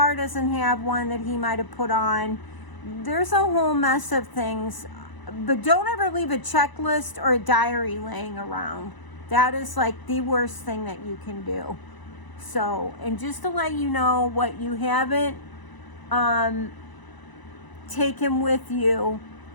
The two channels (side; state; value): right; late; 1.0 ms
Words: doesn't have one that he might have put on. There's a whole mess of things, but don't ever leave a checklist or a diary laying around. That is like the worst thing that you can do. So, and just to let you know, what you haven't taken with you